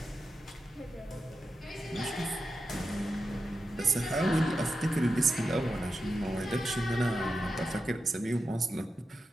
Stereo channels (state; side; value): normal; both; correlation 0.89